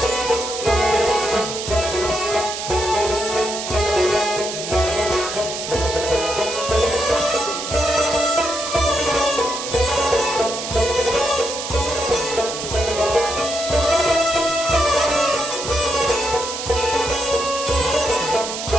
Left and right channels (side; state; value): right; noise; hiss, 6 dB below the sound